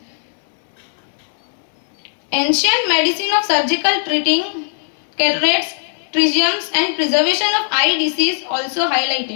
Ancient medicine of surgical treating cataracts, trichomes and preservation of eye disease also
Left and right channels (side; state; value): right; silent; digital silence